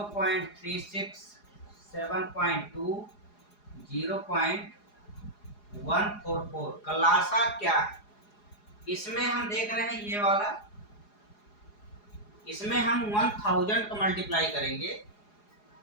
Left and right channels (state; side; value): late; right; 4.8 ms